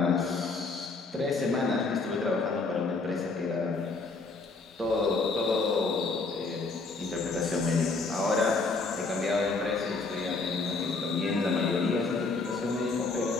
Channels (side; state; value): right; quieter; 3.9 dB